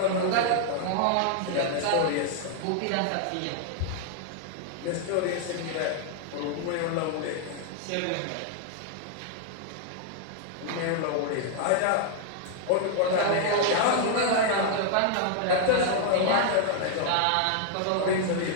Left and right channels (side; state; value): both; different; correlation -0.01